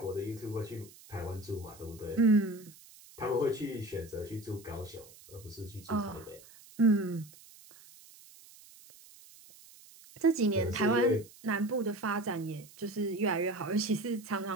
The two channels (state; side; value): noise; right; hiss, 22 dB below the sound